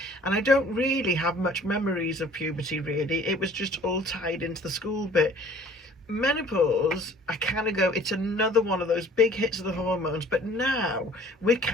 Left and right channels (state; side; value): normal; both; correlation 0.52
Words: And I don't really have much memories of puberty, really. It was just all tied into the school bit. Menopause, I kind of go, it's another one of those big hits of the hormones, but now we're